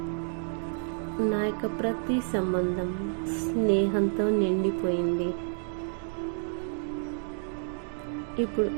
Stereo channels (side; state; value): left; silent; digital silence